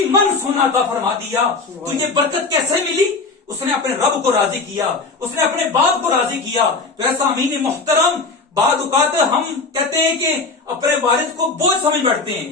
मन सोना अता फरमा दिया। तो ये बरकत कैसे मिली? उसने अपने रब को राजी किया, उसने अपने बाप को राजी किया। तो ऐसा अमीन मोहतरम, बाद औकात हम कहते हैं कि अपने वालिद को बोझ समझ बैठते हैं,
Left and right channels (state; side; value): quieter; right; 4.0 dB